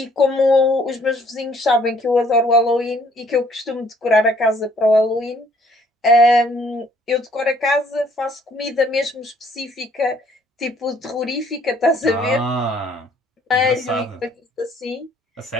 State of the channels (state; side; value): normal; both; correlation 0.62